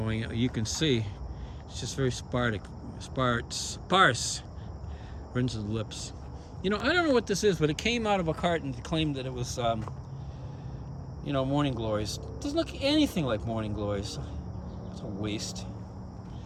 you can see it's just very sparse. Rinse the lips. I don't know what this is, but it came out of a carton to claim that it was, morning glories. It doesn't look anything like morning glories. It's a waste.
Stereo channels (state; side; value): identical; both; correlation 1.00